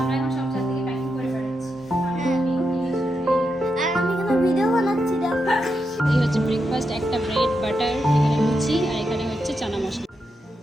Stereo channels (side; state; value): both; normal; correlation 0.85